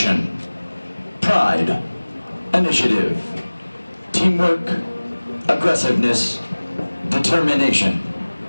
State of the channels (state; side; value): inverted; both; correlation -1.00